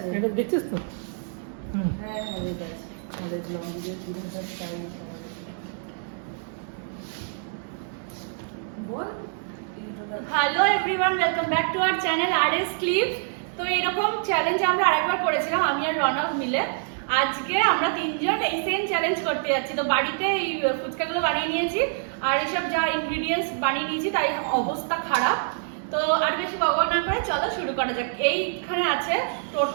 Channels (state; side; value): silent; left; 61 dB below the other